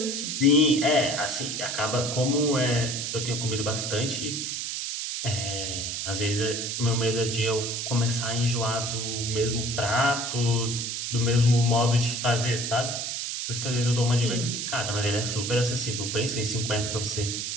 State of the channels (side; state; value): right; noise; hiss, 3 dB below the sound